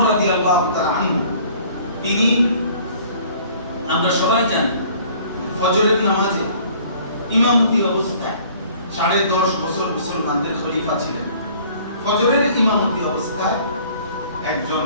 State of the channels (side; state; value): both; inverted; correlation -0.53